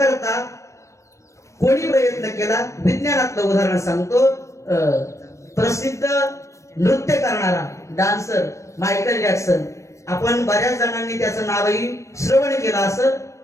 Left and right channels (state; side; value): late; right; 0.15 ms